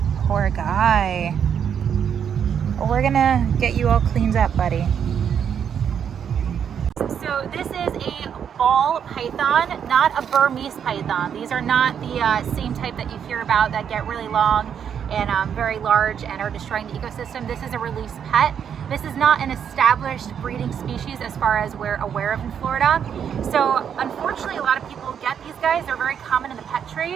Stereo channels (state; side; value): quieter; left; 8.1 dB